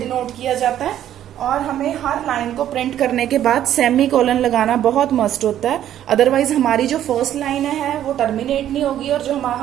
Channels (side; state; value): left; quieter; 11.4 dB